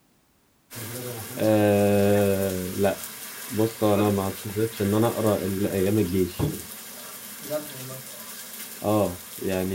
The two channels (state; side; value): identical; both; correlation 1.00